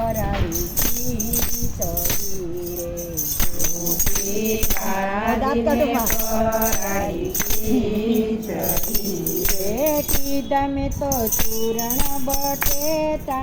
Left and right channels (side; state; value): both; identical; correlation 1.00